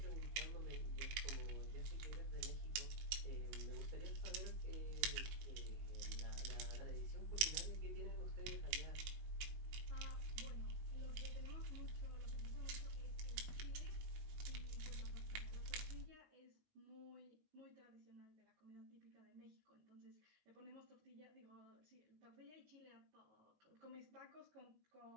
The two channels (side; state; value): left; late; 19 ms